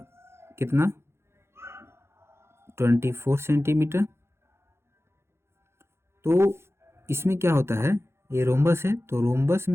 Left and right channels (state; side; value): late; left; 0.12 ms